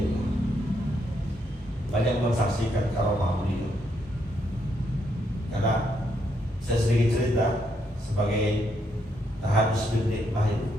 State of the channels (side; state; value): both; normal; correlation 0.76